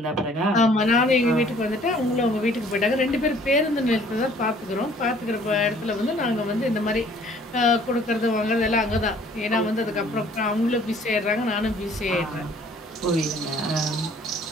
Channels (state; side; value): normal; both; correlation 0.56